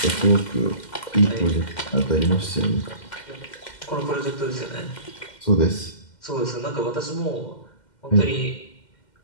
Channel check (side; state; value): right; late; 2.1 ms